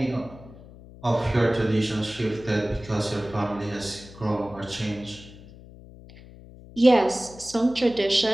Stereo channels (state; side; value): noise; left; hum, 19 dB below the sound